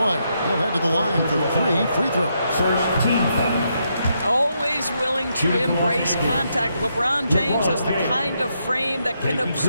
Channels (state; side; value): inverted; both; correlation -0.79